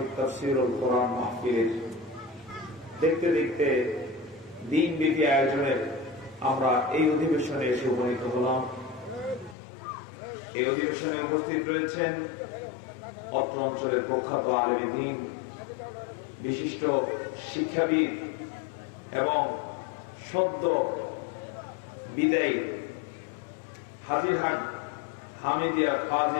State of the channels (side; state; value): right; drops out; at 9.6 s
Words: তাফসীরুল কোরআন মাহফিলের দেখতে দেখতে দিনব্যাপী আয়োজনের আমরা এই অধিবেশনে এসে উপনীত হলাম। এই অধিবেশনে উপস্থিত রয়েছেন অত্র অঞ্চলের প্রখ্যাত আলেমে দ্বীন, বিশিষ্ট শিক্ষাবিদ এবং সদ্য বিদায়ী হাজিরহাট হামিদিয়া